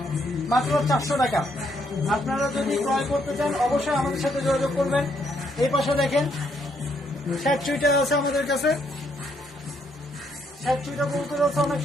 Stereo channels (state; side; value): normal; both; correlation 0.73